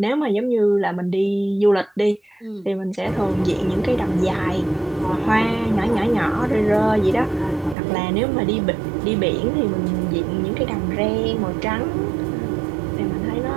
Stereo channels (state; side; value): drops out; left; at 7.8 s